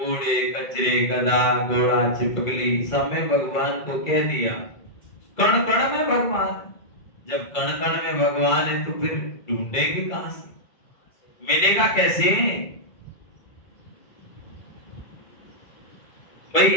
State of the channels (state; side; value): late; right; 2.3 ms